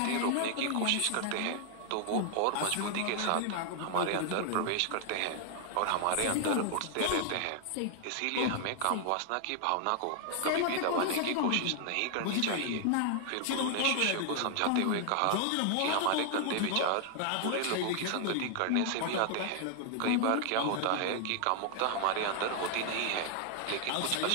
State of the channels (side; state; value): both; different; correlation 0.00